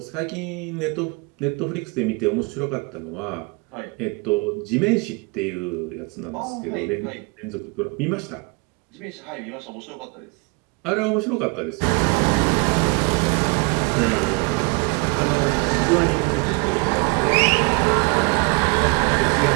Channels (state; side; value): quieter; left; 31.2 dB